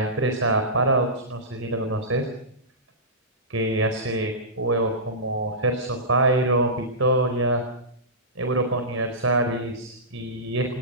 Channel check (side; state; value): both; normal; correlation -0.19